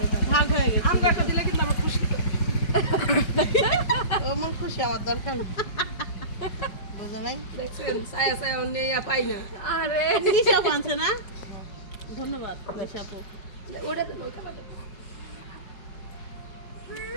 এখানে। ভাগ হয়ে গেছে। আমগো একটা দিলে কিন্তু আমার খুশি তো ও মন খুশি, আমার দরকার নেই। বুঝো নাই দেখছেন ছায়া ছায়া অন্য পাই না আরে নিশা পানছে না, ধন্যবাদ নিশা আপু। ওটা তো নৌকা পাঠাবো।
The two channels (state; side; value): late; right; 4.7 ms